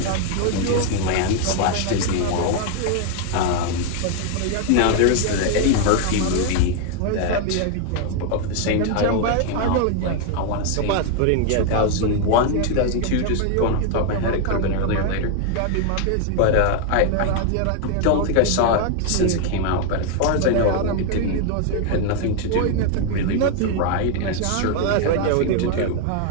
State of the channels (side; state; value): both; different; correlation 0.00